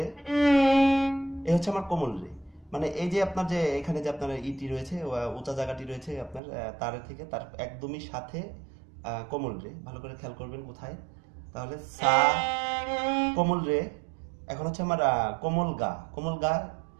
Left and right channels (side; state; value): left; drops out; at 6.4 s